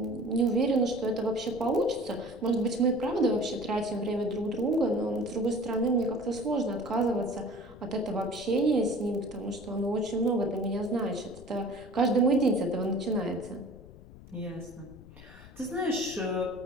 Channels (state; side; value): noise; left; rumble, 19 dB below the sound